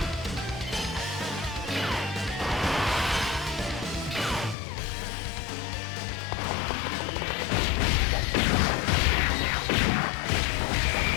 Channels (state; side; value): drops out; right; at 4.5 s